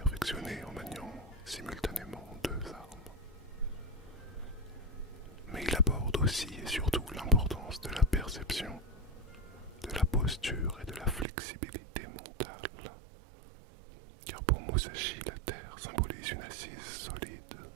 en maniant simultanément 2 armes.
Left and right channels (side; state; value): left; drops out; at 11.2 s